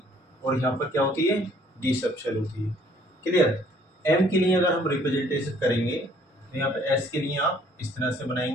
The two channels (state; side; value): normal; both; correlation 0.60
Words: और यहाँ पर क्या होती है D सबशेल होती है। क्लियर, M के लिए अगर हम रिप्रेजेंटेशन करेंगे तो यहाँ पे S के लिए आप इस तरह से